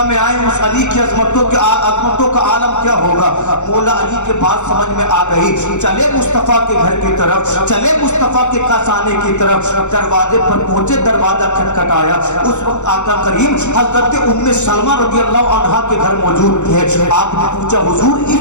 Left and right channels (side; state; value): right; late; 0.83 ms